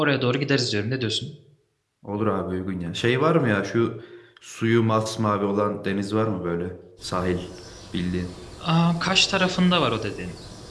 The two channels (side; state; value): both; identical; correlation 1.00